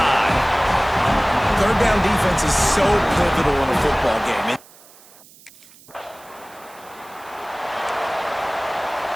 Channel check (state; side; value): noise; right; hiss, 24 dB below the sound